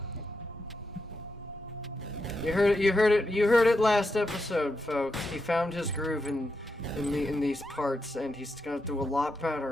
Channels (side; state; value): both; normal; correlation 0.85